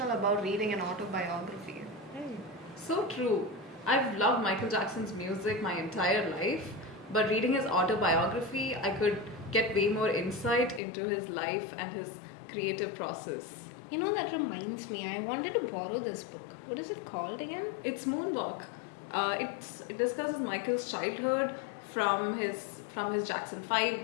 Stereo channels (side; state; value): right; drops out; at 10.8 s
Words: about reading an autobiography. So true. I've loved Michael Jackson's music my entire life, but reading his autobiography, I could get way more insight into his life and his creative process. You know, that reminds me, I wanted to borrow this book. What is it called again? It's Moonwalk. It discusses Michael's childhood from his from his Jackson 5